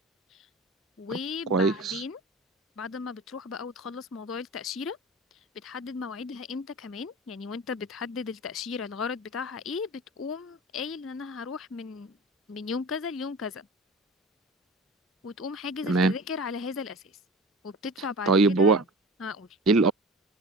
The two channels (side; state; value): both; normal; correlation 0.36